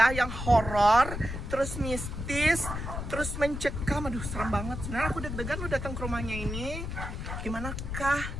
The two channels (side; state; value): left; noise; rumble, 6 dB below the sound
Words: yang horor, terus mistis, terus mencekam. Aduh, serem banget. Sebenarnya aku deg-degan lu datang ke rumahnya ini. Gimanakah